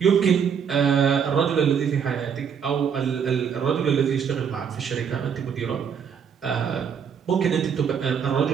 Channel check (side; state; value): left; quieter; 7.3 dB